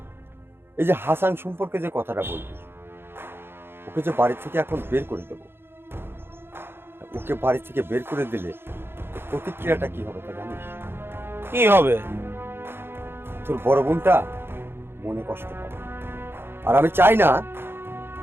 এই যে হাসান সম্পর্কে যে কথাটা বললি, ওকে যে বাড়ি থেকে এখন বের করে দেবো, ওকে বাড়ি থেকে বের করে দিলে তোর প্রতিক্রিয়াটা কি হবে তা জানিস? কি হবে? তোর বড় বোনটা মনে কষ্ট পাবে, আর আমি চাই না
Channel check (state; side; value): late; left; 0.11 ms